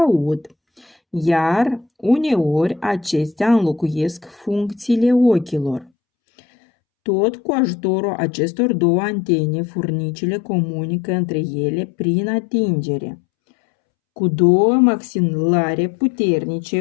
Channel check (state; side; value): drops out; right; at 5.9 s